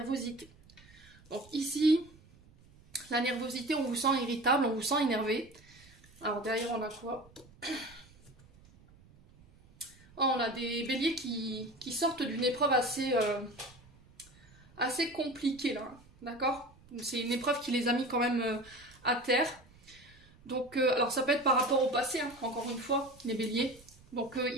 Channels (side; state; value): right; noise; rumble, 26 dB below the sound